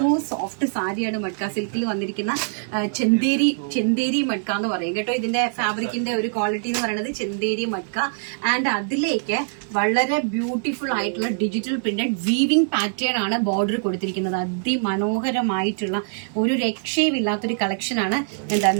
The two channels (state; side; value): silent; left; digital silence